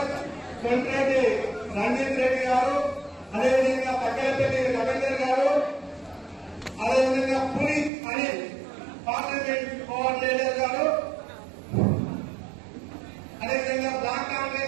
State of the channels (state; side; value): drops out; left; at 7.9 s